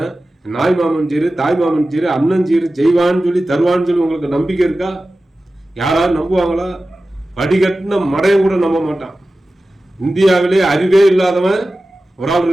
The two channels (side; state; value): both; normal; correlation 0.95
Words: நாய் மாமன் சீரு தாய் மாமன் சீரு அண்ணன் சீரு செய்வான்னு சொல்லி தருவான்னு சொல்லி உங்களுக்கு நம்பிக்கை இருக்கா? யாராவது நம்புவாங்களா? படிக்கட்டின மடையும் கூட நம்ப மாட்டான். இந்தியாவிலே அறிவே இல்லாதவன் ஒரு ஆள்